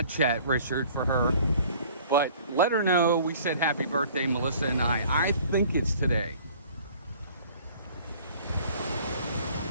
chat, Richard, for her, but let her know we said happy birthday, Melissa and I. I think it's today.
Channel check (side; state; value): both; inverted; correlation -0.52